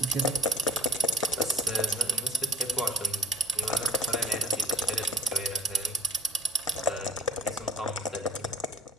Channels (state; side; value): normal; both; correlation 0.39